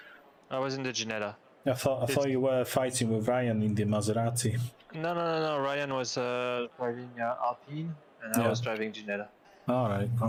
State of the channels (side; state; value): both; identical; correlation 1.00